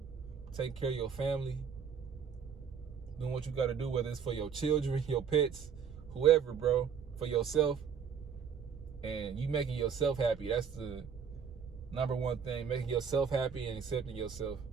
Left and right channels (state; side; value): quieter; left; 7.0 dB